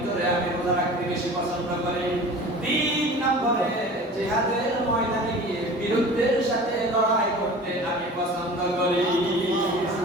আমি রোজা রাখতে বেশি পছন্দ করি তিন নম্বরে জিহাদের ময়দানে গিয়ে বিরুদ্ধের সাথে লড়াই করতে আমি পছন্দ করি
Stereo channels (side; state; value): both; normal; correlation 0.39